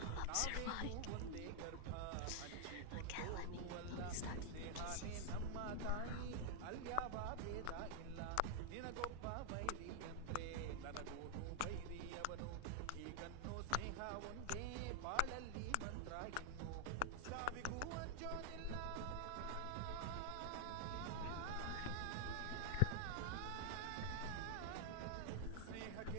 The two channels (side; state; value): both; different; correlation 0.00